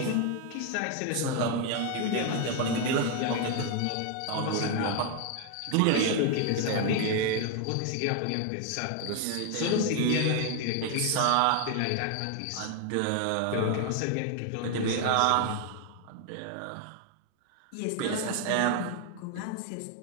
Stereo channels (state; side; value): different; both; correlation 0.01